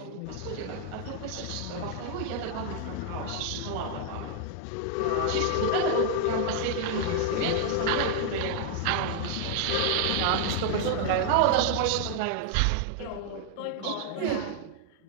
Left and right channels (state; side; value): different; both; correlation 0.00